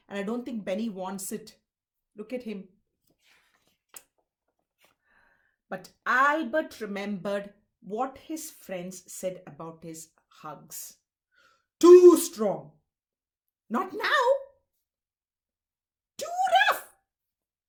And I don't think Benny wants it. Look at him. But Albert remembered what his friends said about his hugs. Too strong. Not now. Too rough.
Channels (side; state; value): both; identical; correlation 1.00